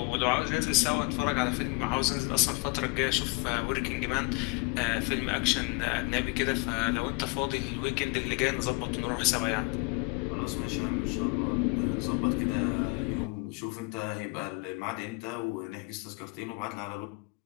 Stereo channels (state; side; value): quieter; right; 28.9 dB